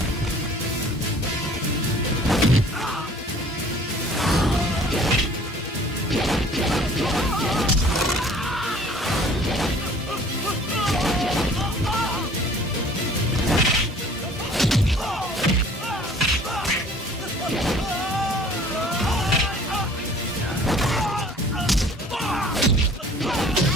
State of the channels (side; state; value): both; normal; correlation 0.51